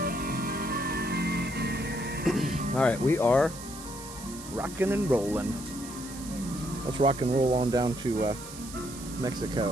All right, we are rocking and rolling. Let's rock and roll on down to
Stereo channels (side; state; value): right; noise; hiss, 13 dB below the sound